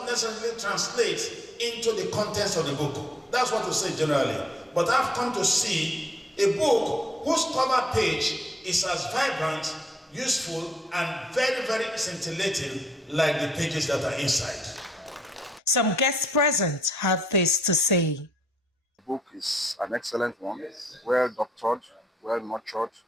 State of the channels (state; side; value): normal; both; correlation 0.71